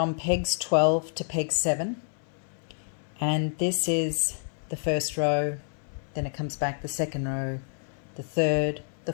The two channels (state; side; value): silent; right; 58 dB below the other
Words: pegs 12 to peg 7, and this is the first row, then it comes back the second row, the third, the